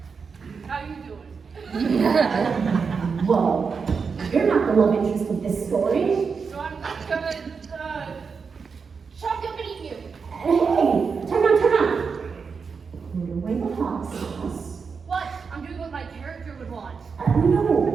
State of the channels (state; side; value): quieter; left; 5.5 dB